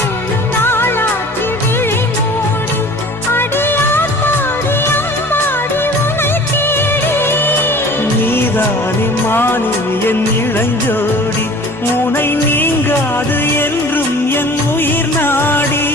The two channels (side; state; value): both; normal; correlation 0.45